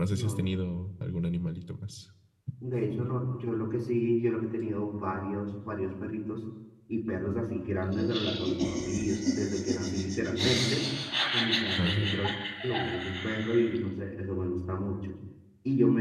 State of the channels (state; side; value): identical; both; correlation 1.00